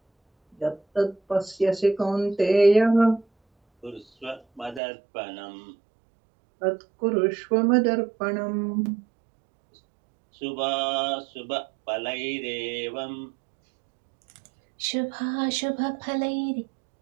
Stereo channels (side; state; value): left; drops out; at 4.8 s